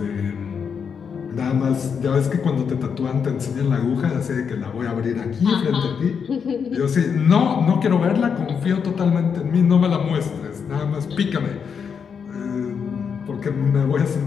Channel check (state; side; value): quieter; right; 6.6 dB